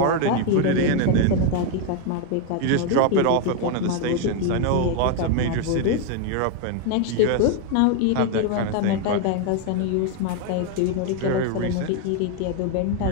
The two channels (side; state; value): both; different; correlation 0.01